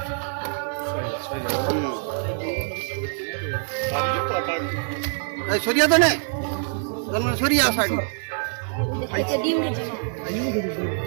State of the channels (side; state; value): left; silent; 56 dB below the other